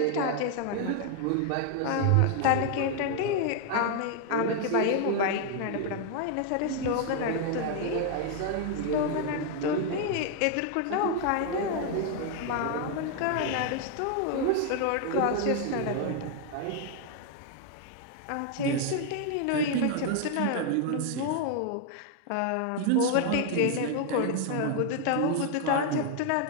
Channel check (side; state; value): both; different; correlation 0.00